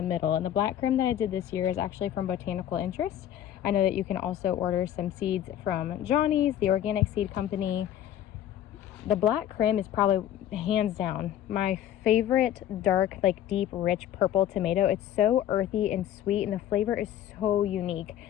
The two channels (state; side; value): quieter; right; 11.2 dB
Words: middle. And the black creme that I did this year is actually from Botanical Interest. I know that you can also order some seeds from Johnny's, the organic seed company. The black creme is probably hands down my favorite dark, like deep, rich purple tomato. It's so earthy and sweet, and the flavor is so unique.